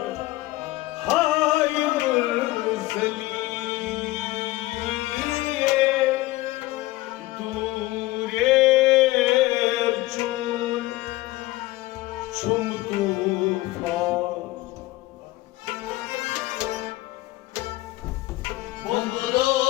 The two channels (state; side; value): quieter; right; 18.7 dB